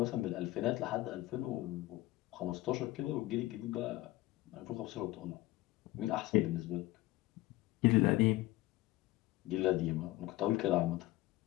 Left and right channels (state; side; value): quieter; right; 17.9 dB